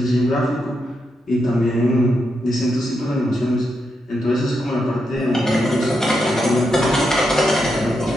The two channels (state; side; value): normal; both; correlation 0.83